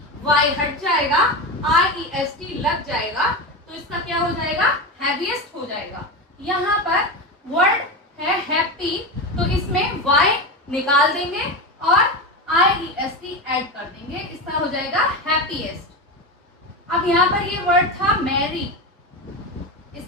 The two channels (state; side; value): normal; both; correlation 0.19